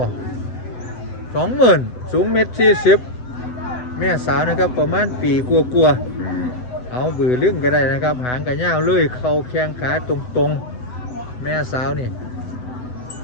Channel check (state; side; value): late; right; 8.1 ms